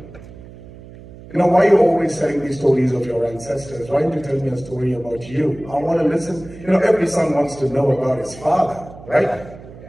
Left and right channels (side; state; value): right; noise; hum, 18 dB below the sound